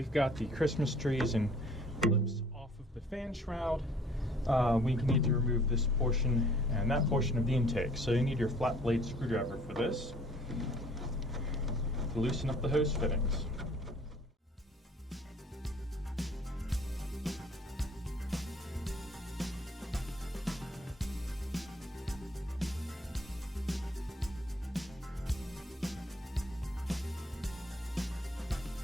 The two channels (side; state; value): both; normal; correlation 0.55